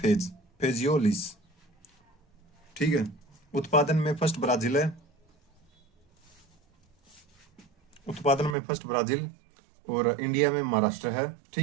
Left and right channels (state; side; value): drops out; left; at 8.6 s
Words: फेजियोलिस। ठीक है, उत्पादन में फर्स्ट ब्राजील है, उत्पादन में फर्स्ट ब्राजील, और इंडिया में महाराष्ट्र है।